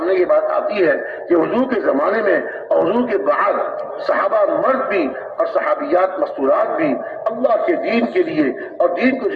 یہ بات آتی ہے کہ حضور کے زمانے میں اور حضور کے بعد صحابہ مرد بھی اور صحابیات مستورات بھی اللہ کے دین کے لیے اور دین کو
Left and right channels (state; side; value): identical; both; correlation 1.00